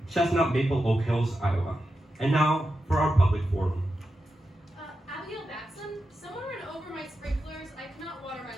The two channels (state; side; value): normal; both; correlation 0.89